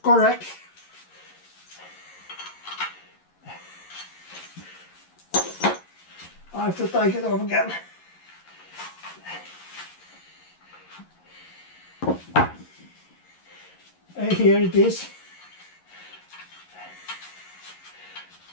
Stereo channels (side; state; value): right; late; 11 ms